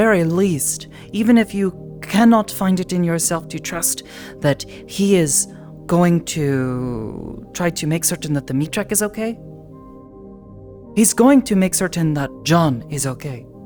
least, even if you cannot find it in yourself to trust that he is going to try to make certain that the meat truck is okay, he's going to make certain that John is okay.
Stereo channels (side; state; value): both; identical; correlation 1.00